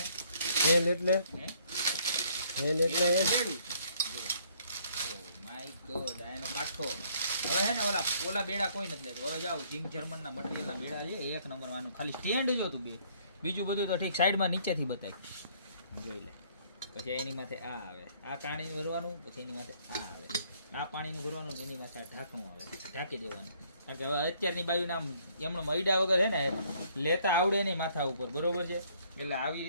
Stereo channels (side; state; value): both; inverted; correlation -0.63